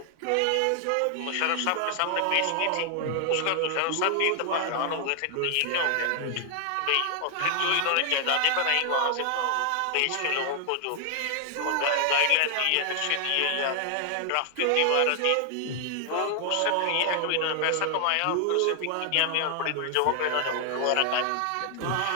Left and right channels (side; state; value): both; different; correlation 0.00